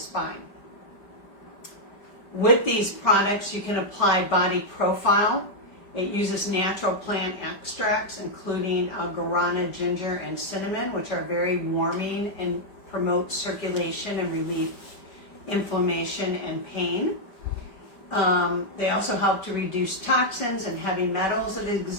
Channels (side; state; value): right; late; 5.1 ms